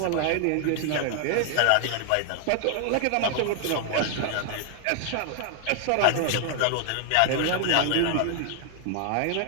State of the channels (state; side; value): different; both; correlation 0.00